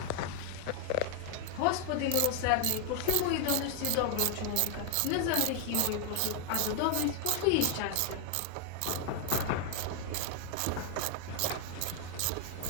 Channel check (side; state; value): both; different; correlation 0.00